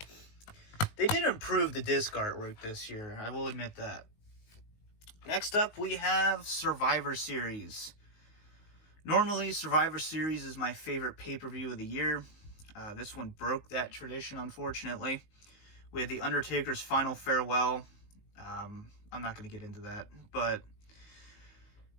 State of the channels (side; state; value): right; late; 19 ms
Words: They did improve the disc artwork this year. I will admit that. Next up, we have Survivor Series. Normally, Survivor Series is my favorite pay-per-view of the year. This one broke that tradition, unfortunately. We had The Undertaker's Final Farewell. I'm not going to get into that, but